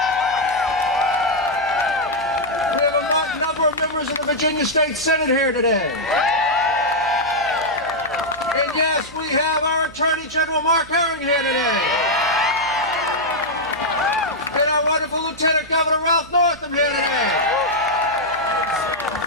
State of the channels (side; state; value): right; noise; hum, 21 dB below the sound